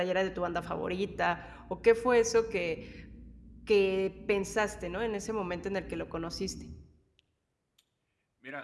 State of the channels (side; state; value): both; identical; correlation 1.00